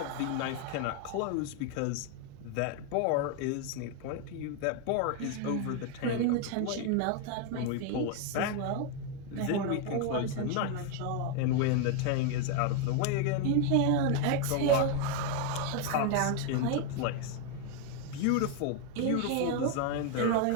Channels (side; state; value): both; different; correlation 0.01